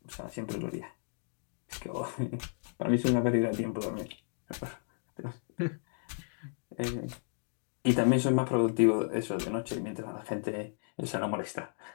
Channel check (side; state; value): right; silent; digital silence